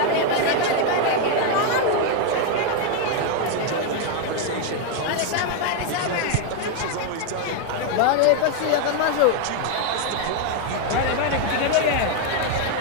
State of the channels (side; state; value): both; different; correlation 0.01